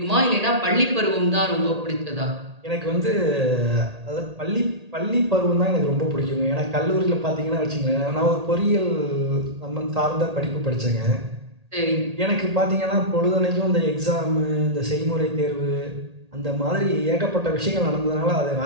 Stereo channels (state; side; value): late; left; 1.8 ms